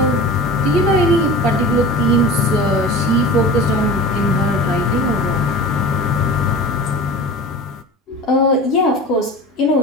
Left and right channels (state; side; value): normal; both; correlation 0.36